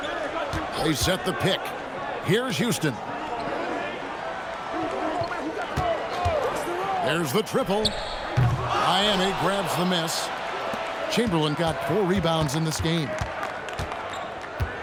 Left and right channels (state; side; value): identical; both; correlation 1.00